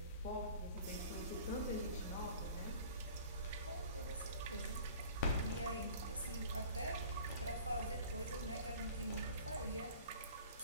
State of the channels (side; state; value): both; inverted; correlation -0.46